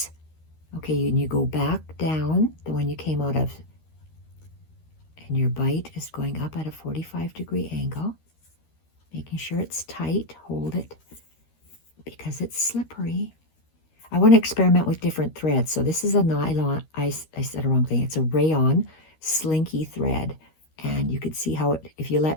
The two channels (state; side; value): late; right; 13 ms